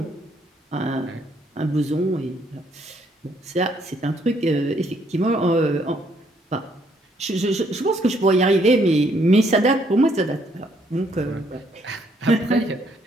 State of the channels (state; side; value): normal; both; correlation 0.69